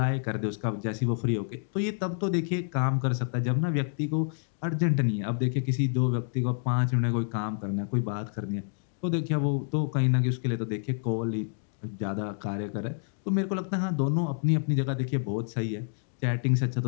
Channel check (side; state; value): right; silent; digital silence